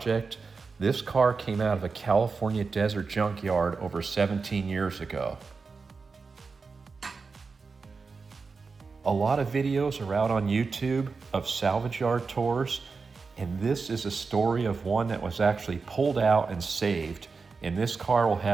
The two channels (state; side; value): quieter; left; 4.6 dB